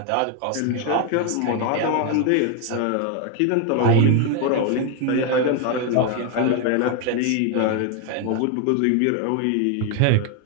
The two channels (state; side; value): different; both; correlation 0.01